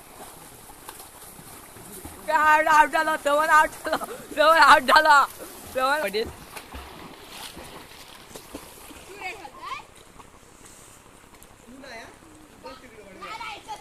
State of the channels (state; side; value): identical; both; correlation 1.00